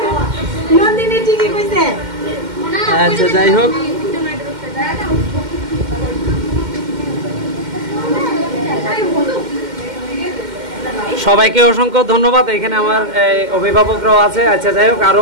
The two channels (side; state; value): left; late; 2.1 ms